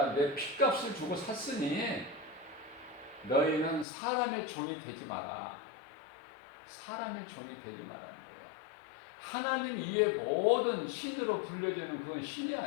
핏값을 주고 샀으니 너희는 사람의 종이 되지 마라. 사람의 종이 되지 말라는 거야. 하나님 이외의 모든 신으로 불려지는 그건 신이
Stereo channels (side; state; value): right; drops out; at 3.9 s